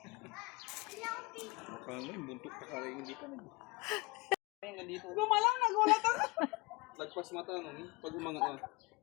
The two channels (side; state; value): right; quieter; 25.9 dB